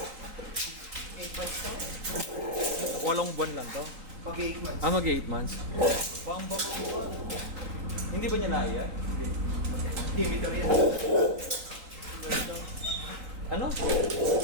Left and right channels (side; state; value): left; late; 3.9 ms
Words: Walong buwan lang to. Pag 8 months. Mag 8 months. Bam-bam. Hindi ba niya naiya? Hindi. Timitor yan. Ano?